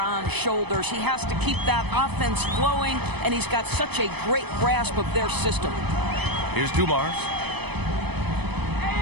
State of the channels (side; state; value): left; late; 0.99 ms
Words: shoulders. He has to keep that offense flowing, and he's got such a great grasp of their system. Here's Dumars.